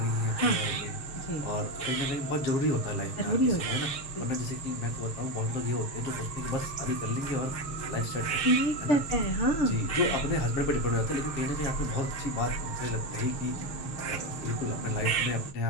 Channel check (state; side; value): late; right; 6.5 ms